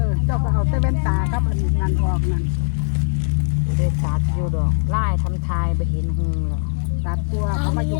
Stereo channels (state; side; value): silent; right; digital silence